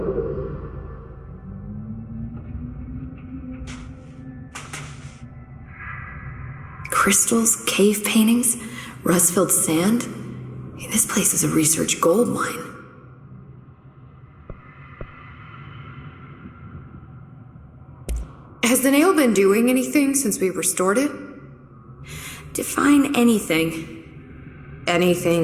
Crystals, cave paintings, rust-filled sand. This place is a research gold mine. Has the nail been doing anything since we restored it? Define anything.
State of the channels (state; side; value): identical; both; correlation 1.00